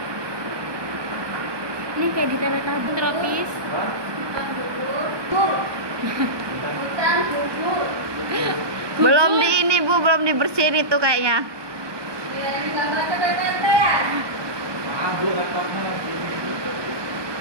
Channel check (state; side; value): late; left; 1.2 ms